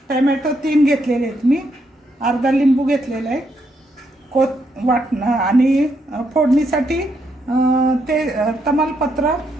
टोमॅटो 3 घेतलेले आहेत मी, अर्धा लिंबू घेतलेला आहे, वाटणं आणि फोडणीसाठी ते तमालपत्र,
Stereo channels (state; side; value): normal; both; correlation 0.77